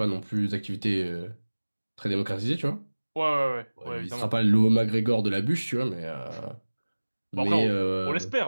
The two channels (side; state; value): both; inverted; correlation -1.00